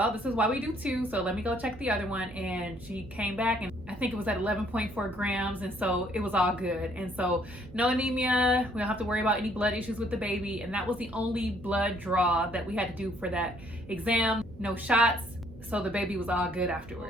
this is why we do 2, so let me go check the other one. And she came back and I think it was at 11.4 grams, and so it was all good. And so no anemia, we don't have to worry about any blood issues with the baby, and that was the only blood draw that we had to do for that exam. No shots, so the baby was all good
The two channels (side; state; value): right; noise; hum, 19 dB below the sound